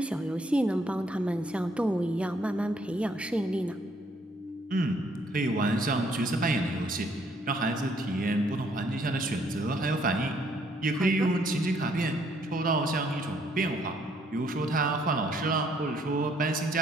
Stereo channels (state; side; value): normal; both; correlation 0.67